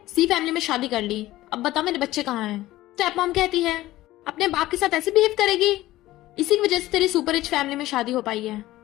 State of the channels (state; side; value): quieter; right; 16.3 dB